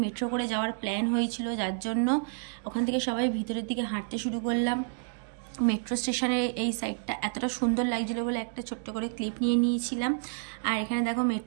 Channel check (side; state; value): left; silent; 58 dB below the other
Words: মেট্রো করে যাওয়ার প্ল্যান হয়েছিল, যার জন্য ওখান থেকে সবাই ভিতরের দিকে হাঁটতে শুরু করলাম। মেট্রো স্টেশনের এই সাইডটা এতটা সুন্দর লাগছিলো বলে একটা ছোট্ট করে ক্লিপ নিয়ে নিয়েছিলাম। আর এখানে দেখো